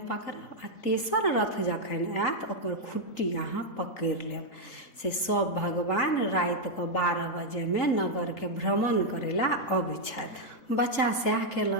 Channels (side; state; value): right; late; 4.0 ms